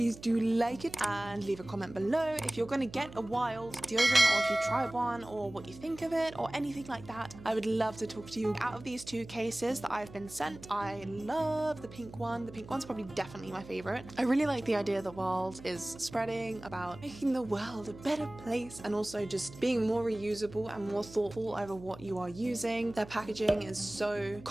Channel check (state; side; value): noise; right; hum, 17 dB below the sound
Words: do like it and leave a comment below if you're gonna get a Wild deodorant, or if you tried one, or what you think of it, or anything like that. I would love to talk to you. Out of these two cases that I've been sent, I love the pink one. The pink one's probably definitely my favorite. I really like the idea that Wild is spreading about making the world a better place, and also just being more reusable and more thoughtful over what you are using. Their packaging is so